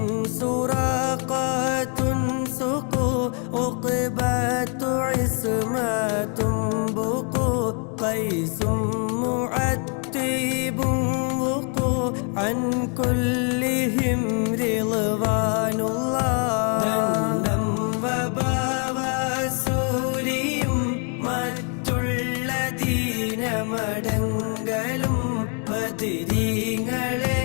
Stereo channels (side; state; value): right; quieter; 39.4 dB